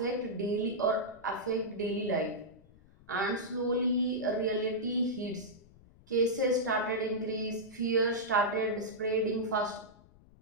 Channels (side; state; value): left; noise; rumble, 25 dB below the sound